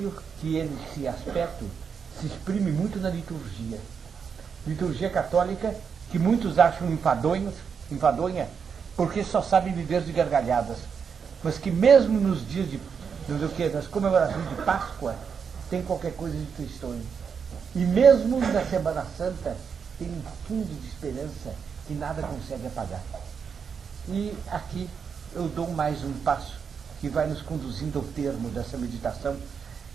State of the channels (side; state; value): left; quieter; 6.4 dB